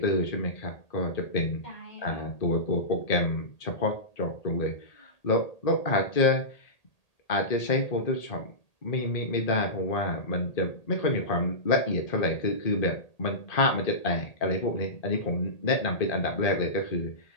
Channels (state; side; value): late; right; 1.8 ms